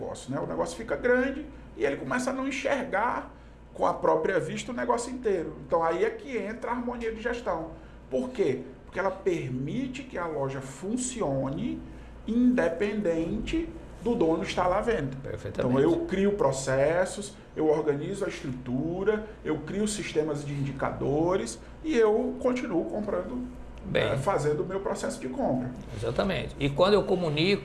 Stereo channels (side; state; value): both; identical; correlation 1.00